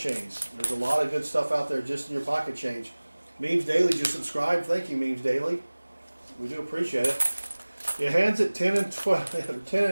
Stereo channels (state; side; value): inverted; both; correlation -1.00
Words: There's a lot of good stuff out there just in your pocket change. Memes Daily, just subscribe. Thank you, Memes Daily. We do appreciate it. Your hands at 10 and 12, 10